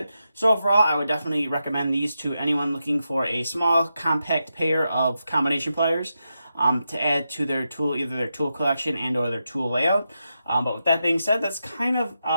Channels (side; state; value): both; inverted; correlation -0.87